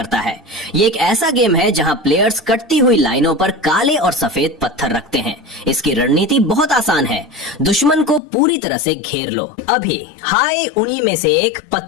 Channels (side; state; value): right; drops out; at 8.2 s